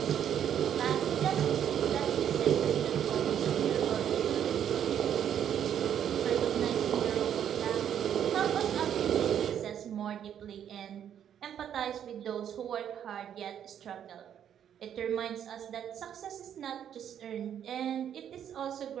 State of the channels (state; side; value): quieter; left; 9.4 dB